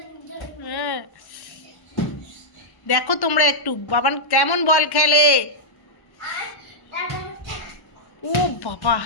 হ্যাঁ, দেখো তোমরা একটু বাবান কেমন বল খেলে। ও বাবা,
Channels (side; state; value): right; late; 1.1 ms